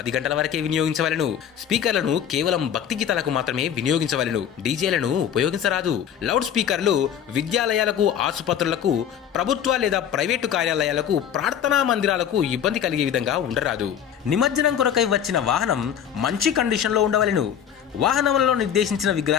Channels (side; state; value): right; quieter; 9.1 dB